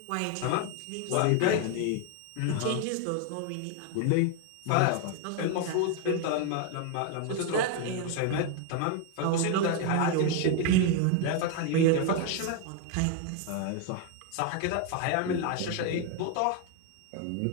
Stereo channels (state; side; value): different; both; correlation 0.01